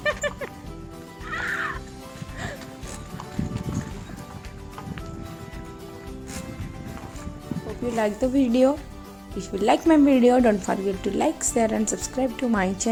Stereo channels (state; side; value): identical; both; correlation 1.00